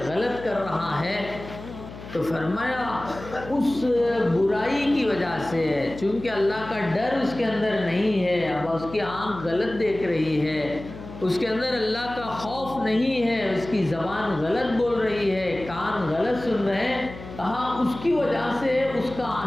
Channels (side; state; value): left; noise; hum, 14 dB below the sound